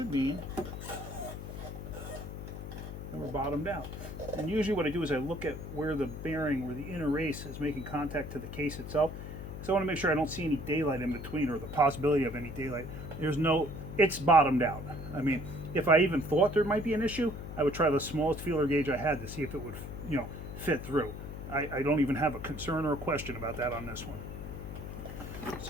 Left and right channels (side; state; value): left; noise; hum, 9 dB below the sound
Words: mean that we're bottomed out. And usually what I do is I look at where the bearing, where the inner race is making contact to the case itself. So I want to make sure I don't see any daylight in between, or the possibility of any daylight. It's bottomed out. I mean, if I even thought there might be an issue, I would try the smallest feeler gauge I had to see if it would, fit through. I don't even have a concern or a question about that on this one.